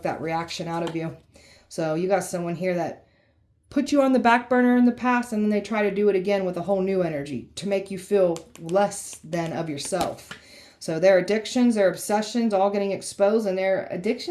that reaction out of you. So you got someone here that put you on the back burner in the past, and then they try to do it again with a whole new energy to make you feel less than of yourself. So their addictions, their obsessions, all getting exposed, and their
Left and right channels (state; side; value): identical; both; correlation 1.00